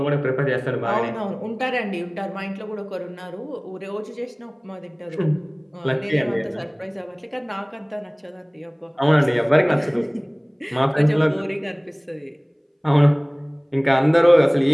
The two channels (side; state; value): both; identical; correlation 1.00